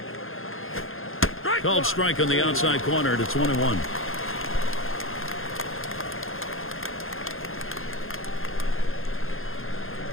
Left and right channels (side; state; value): right; late; 0.60 ms